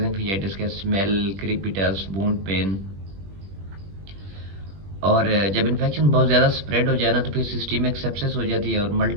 फेजाइटिस के। Smell, crepitus, wound pain. और जब इन्फेक्शन बहुत ज़्यादा स्प्रेड हो जाए ना, तो फिर सिस्टमिक सेप्सिस हो जाती है और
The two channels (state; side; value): late; left; 21 ms